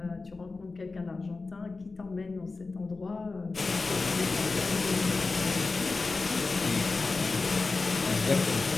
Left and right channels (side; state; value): right; quieter; 3.9 dB